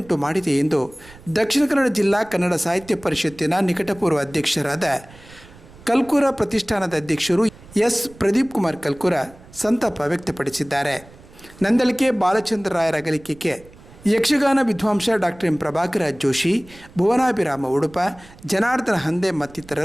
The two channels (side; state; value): right; noise; rumble, 22 dB below the sound